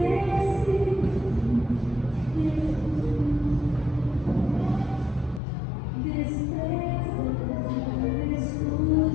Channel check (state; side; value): drops out; right; at 5.4 s